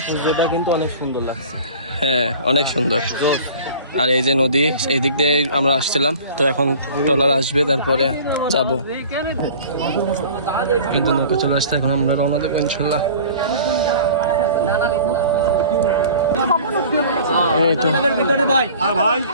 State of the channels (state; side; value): inverted; both; correlation -0.44